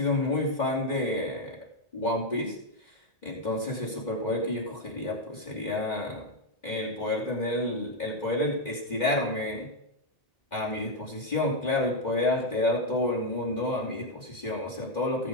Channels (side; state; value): right; late; 2.1 ms